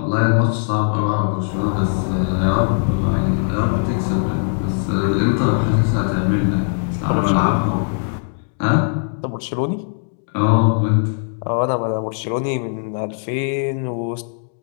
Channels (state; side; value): silent; right; digital silence